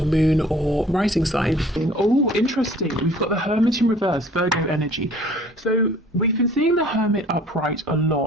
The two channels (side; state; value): both; normal; correlation 0.52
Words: moon or rising sign. Oh, interesting. We've got the Hermit in reverse, Virgo energy. So we've been seeing the Hermit upright a